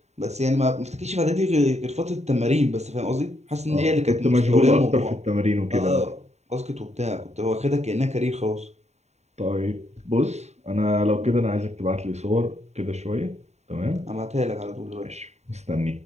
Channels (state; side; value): late; left; 0.32 ms